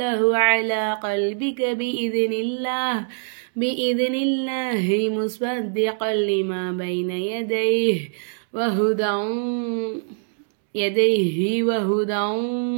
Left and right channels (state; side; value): silent; left; 63 dB below the other